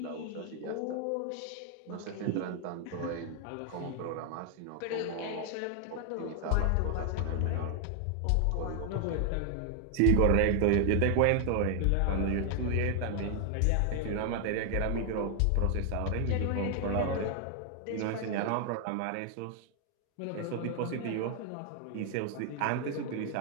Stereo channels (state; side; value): different; both; correlation 0.00